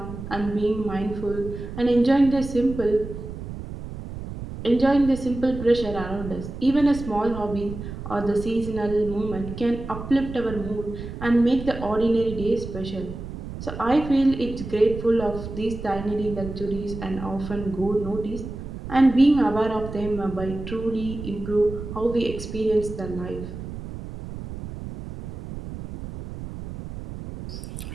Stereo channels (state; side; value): noise; right; rumble, 9 dB below the sound